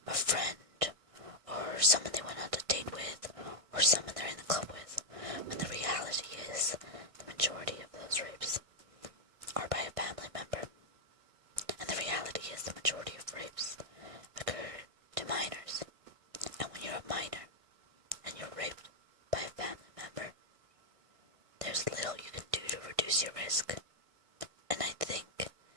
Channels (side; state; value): left; late; 1.6 ms